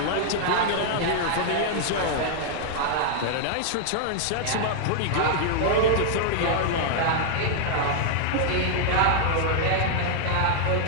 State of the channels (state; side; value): different; both; correlation -0.01